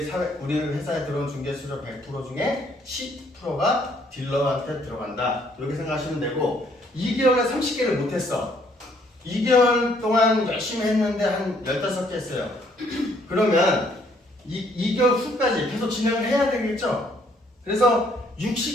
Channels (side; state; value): both; normal; correlation 0.66